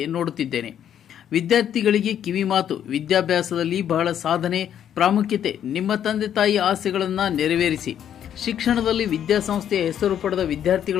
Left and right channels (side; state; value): right; quieter; 9.7 dB